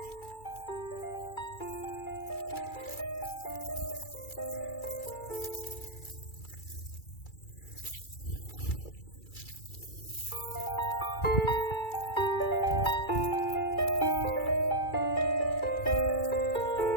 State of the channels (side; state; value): right; late; 2.3 ms